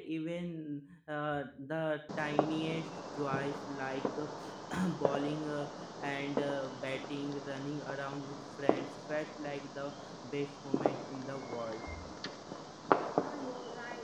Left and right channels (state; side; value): identical; both; correlation 1.00